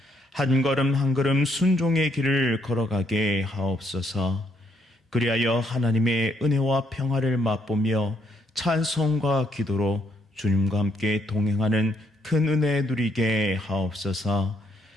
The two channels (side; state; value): both; normal; correlation 0.73